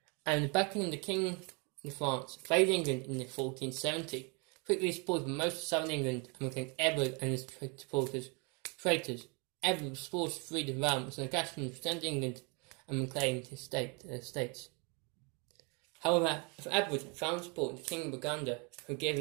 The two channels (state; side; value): quieter; left; 32.3 dB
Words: and the backing of the King of France invaded England in 1470, quickly supported most of southern England and became Edward and his supporters traitors. Edward was forced to flee the realm as Lancastrians returned to England and reclaimed his states. However, if Edward found support in the King of Burgundy, who gave